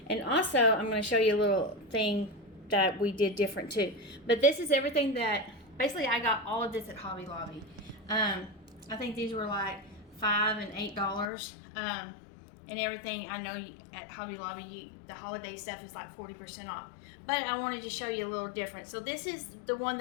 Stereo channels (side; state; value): right; drops out; at 11.2 s